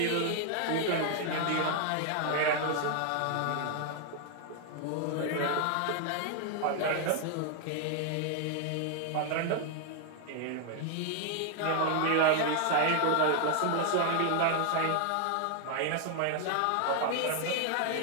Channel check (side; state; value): both; different; correlation 0.00